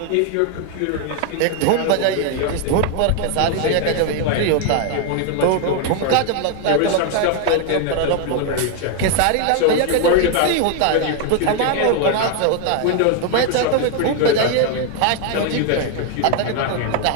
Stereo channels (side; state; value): both; different; correlation 0.00